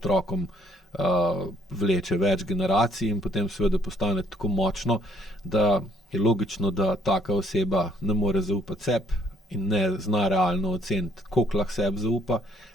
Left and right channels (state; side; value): normal; both; correlation 0.65